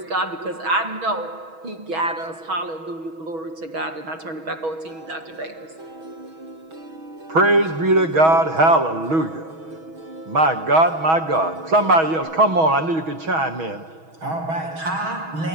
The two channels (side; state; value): left; late; 6.2 ms